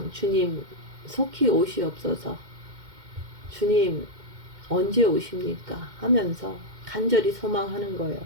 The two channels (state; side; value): late; left; 2.1 ms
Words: 주님 속히 오시옵소서, 주님 언제 오십니까 하면서 간절히 소망하는 거예요.